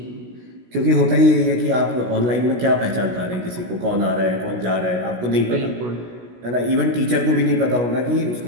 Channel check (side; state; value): left; late; 16 ms